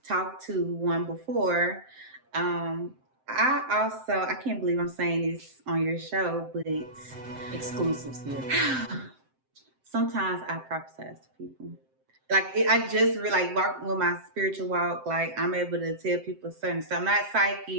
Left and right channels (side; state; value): left; late; 7.7 ms